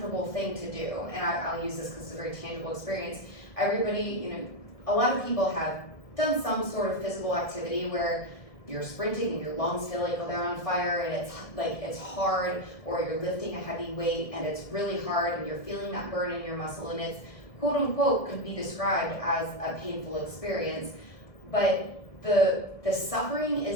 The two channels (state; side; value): late; right; 1.6 ms